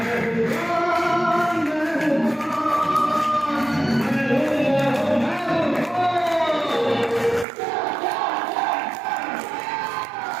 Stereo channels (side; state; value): left; drops out; at 7.5 s